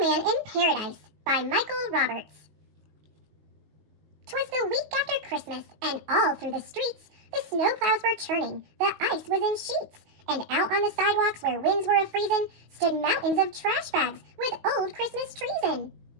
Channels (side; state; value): left; late; 19 ms